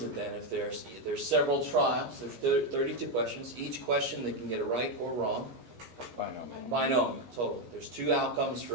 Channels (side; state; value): left; late; 17 ms